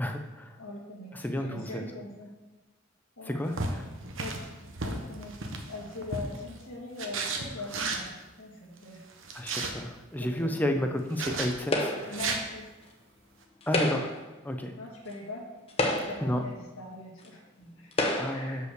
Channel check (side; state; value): both; normal; correlation 0.48